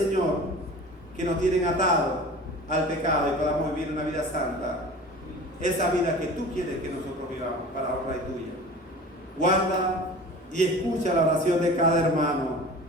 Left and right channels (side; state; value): both; normal; correlation 0.39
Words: que nos tienen atados al pecado y podamos vivir una vida santa. Esa vida que tú quieres que nosotros vivamos para honra y tuya. Guarda y escucha la oración de cada hermano